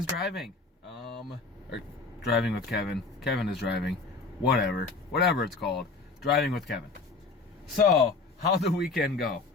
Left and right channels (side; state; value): right; quieter; 4.0 dB